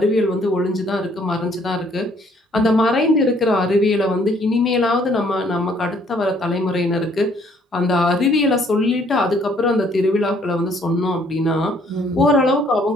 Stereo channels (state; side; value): normal; both; correlation 0.64